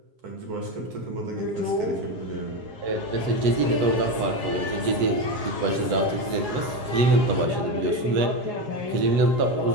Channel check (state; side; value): late; left; 7.4 ms